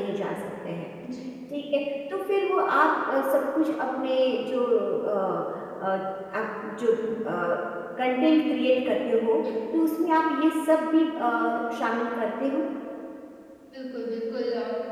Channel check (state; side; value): identical; both; correlation 1.00